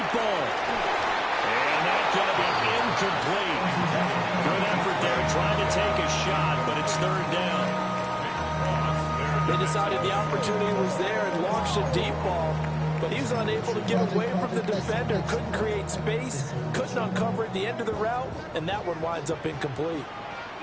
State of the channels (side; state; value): both; identical; correlation 1.00